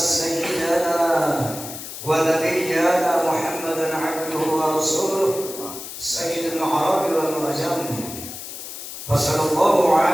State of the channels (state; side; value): noise; left; hiss, 10 dB below the sound